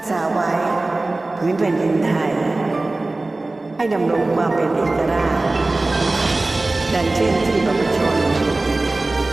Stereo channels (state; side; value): quieter; left; 3.0 dB